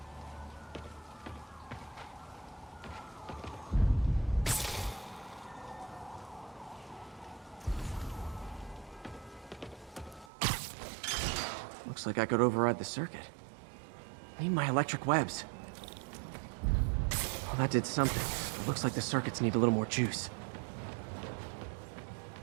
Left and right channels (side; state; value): left; drops out; at 10.3 s